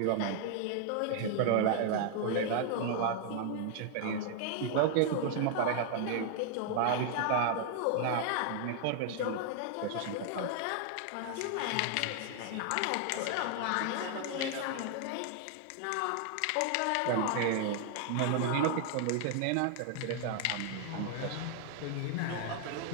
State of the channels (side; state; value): both; different; correlation 0.00